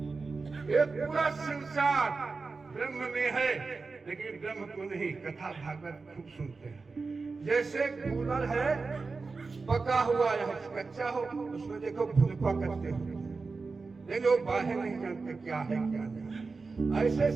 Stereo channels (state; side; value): quieter; left; 4.2 dB